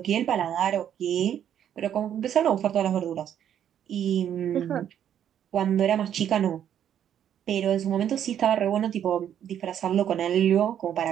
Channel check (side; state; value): left; quieter; 9.8 dB